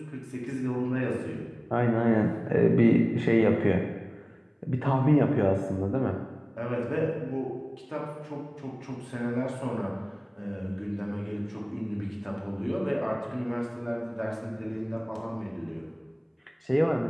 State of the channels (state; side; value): identical; both; correlation 1.00